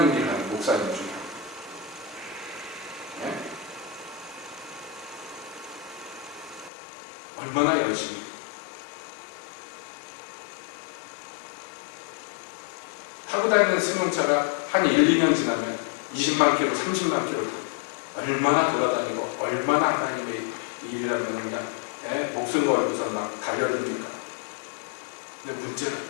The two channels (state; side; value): drops out; right; at 6.7 s